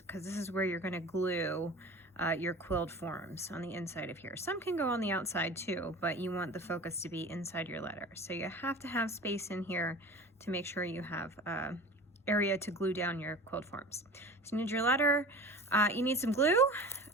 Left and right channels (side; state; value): both; normal; correlation 0.37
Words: this is where you're going to glue your quilled forms on the inside of here. Some can go on the outside too, but you want the focus to be inside your letter. So you have to have space in here to make sure you have area to glue down your quilled forms. So you need your letter. You need some glue.